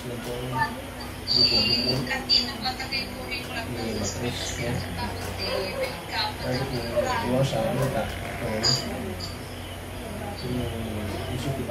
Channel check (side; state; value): both; identical; correlation 1.00